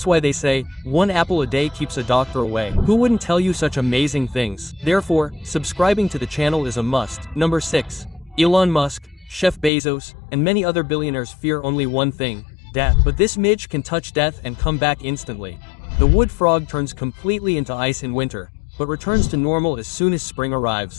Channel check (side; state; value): right; drops out; at 9.7 s